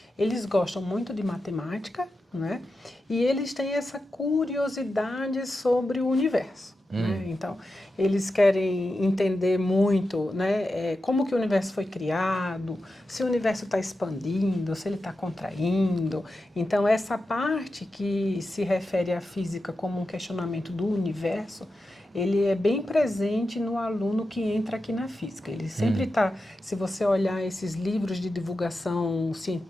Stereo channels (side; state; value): both; normal; correlation 0.90